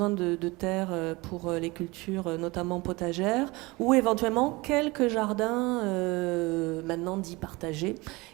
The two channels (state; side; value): quieter; left; 23.4 dB